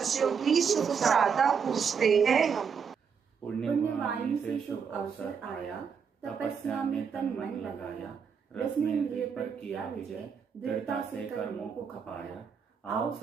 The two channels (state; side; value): quieter; left; 6.5 dB